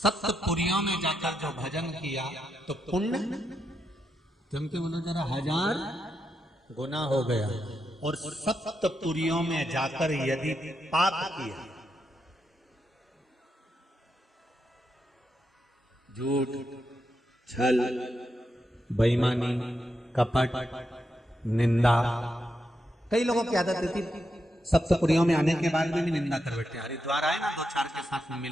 में जाकर जो भजन किया तो पुण्य तुम के बोलो जरा 1000 गुना हो गया। और सप्तपुरियों में जाकर यदि पाप किया, झूठ, छल, बेईमानी, कपट, निंदा, कई लोगों की आदत थी सप्तपुरियों में आने के बाद भी निंदा कर बैठे। हरिद्वार आए ना 2-4 के साथ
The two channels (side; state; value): both; normal; correlation 0.84